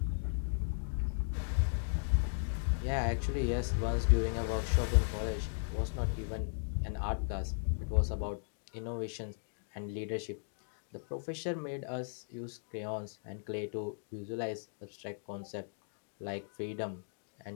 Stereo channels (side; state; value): right; silent; digital silence